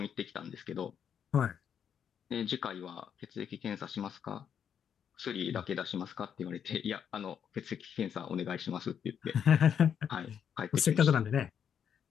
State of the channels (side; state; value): right; quieter; 8.1 dB